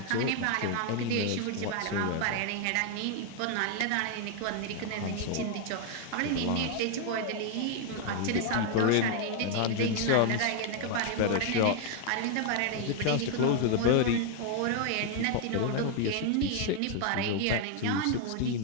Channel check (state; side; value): different; both; correlation 0.00